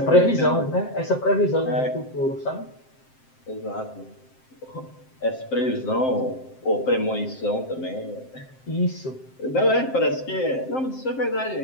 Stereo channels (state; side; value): late; right; 7.6 ms